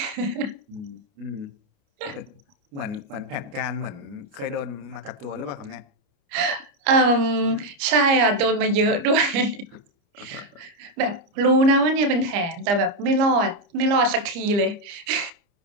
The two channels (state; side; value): late; left; 29 ms